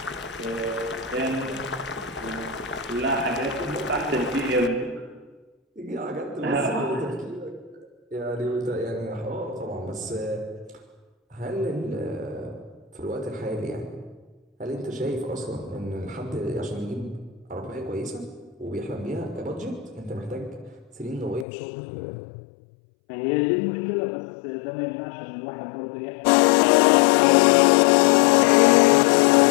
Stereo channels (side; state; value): right; drops out; at 21.5 s